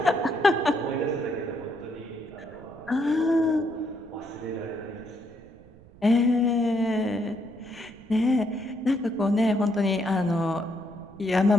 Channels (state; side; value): noise; right; rumble, 23 dB below the sound